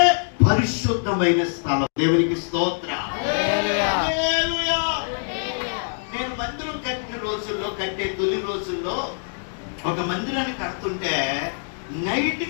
పరిశుద్ధమైన స్థలం. దేవునికి స్తోత్రం. నేను మందిరం కట్టే తొలి రోజుల్లో ఒక మందిరాన్ని కడుతుంటే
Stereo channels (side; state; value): right; silent; digital silence